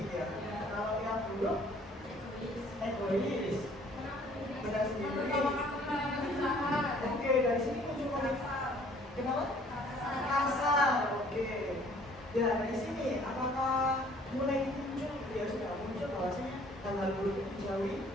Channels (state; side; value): normal; both; correlation 0.57